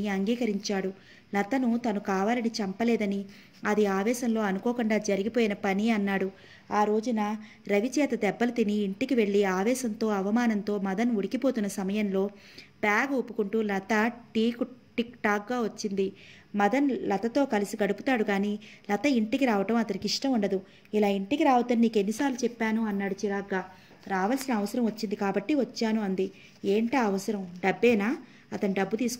అంగీకరించాడు. లతను తను కావాలని చంపలేదని, అది ఆవేశంలో అనుకోకుండా జరిగిపోయిన పని అన్నాడు. ఆ రోజున రవి చేత దెబ్బలు తిని ఇంటికి వెళ్ళి ఆవేశంతో అవమానంతో మదన్ ఉడికిపోతున్న సమయంలో బ్యాగ్ ఊపుకుంటూ లత టిక్ టాక్గా వచ్చింది. మదన్ లతతో కలిసి గడుపుతాడు కానీ లత ఇంటికి రావటం అతనికి ఇష్టం ఉండదు. ఇలా ఇంటికి రావద్దని నీకు ఎన్నిసార్లు చెప్పాను అన్నాడు చిరాగ్గా. రావాల్సిన అవసరం వచ్చింది కాబట్టి వచ్చాను అంది. ఏంటా అవసరం? డబ్బేనా? అతను డబ్బు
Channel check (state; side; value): identical; both; correlation 1.00